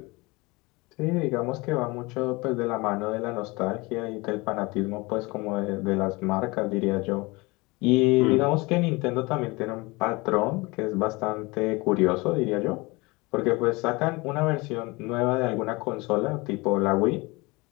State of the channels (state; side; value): quieter; right; 24.5 dB